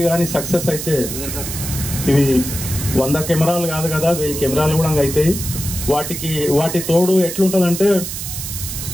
కానీ సక్సెస్ అయితే ఇవి 100 కెమెరాలు కాదు కదా, 1000 కెమెరాలు కూడా అవుతాయి. వాటి తోడు ఎట్లుంటుందంటే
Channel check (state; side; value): noise; right; hiss, 6 dB below the sound